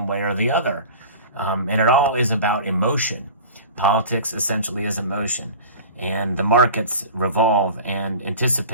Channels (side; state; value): both; inverted; correlation -0.37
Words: way or the other. And it all is about emotion. Politics essentially is emotion, and the markets revolve and